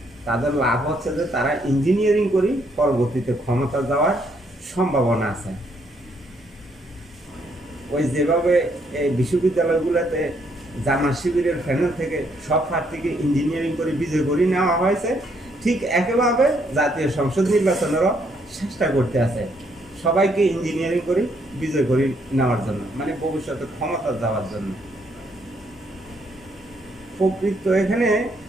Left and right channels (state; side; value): normal; both; correlation 0.72